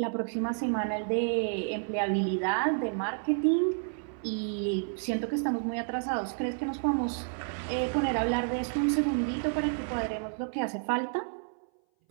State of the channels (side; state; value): left; silent; 58 dB below the other